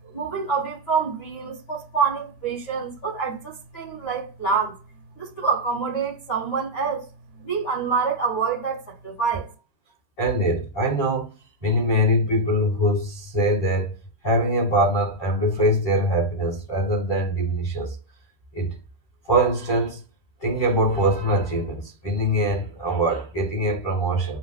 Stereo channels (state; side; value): late; right; 13 ms